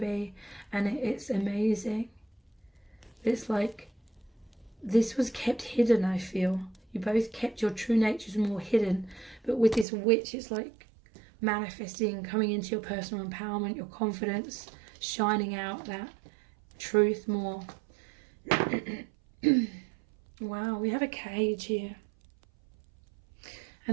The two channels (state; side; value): drops out; left; at 9.9 s